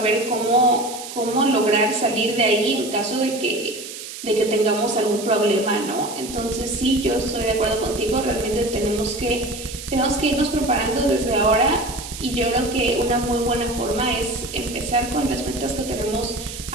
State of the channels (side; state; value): right; noise; hiss, 11 dB below the sound